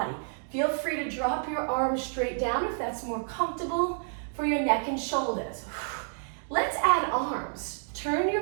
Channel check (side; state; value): left; silent; digital silence